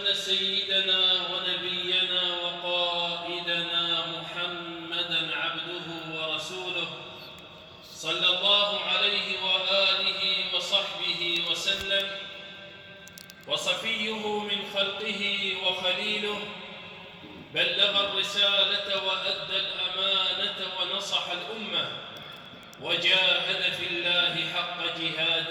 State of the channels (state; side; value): identical; both; correlation 1.00